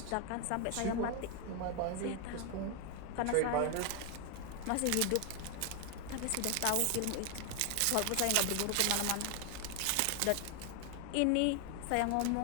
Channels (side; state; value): both; different; correlation 0.00